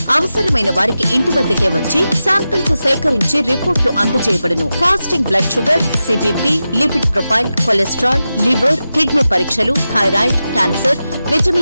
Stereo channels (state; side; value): inverted; both; correlation -0.92